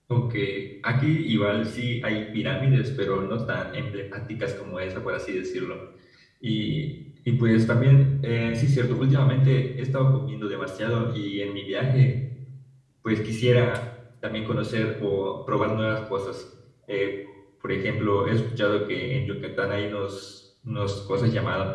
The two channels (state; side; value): identical; both; correlation 1.00